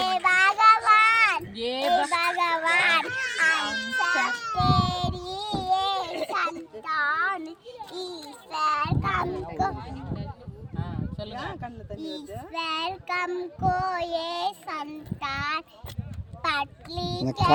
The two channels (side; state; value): both; identical; correlation 1.00